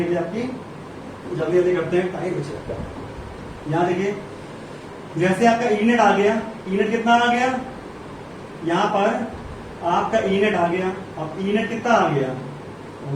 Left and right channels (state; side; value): identical; both; correlation 1.00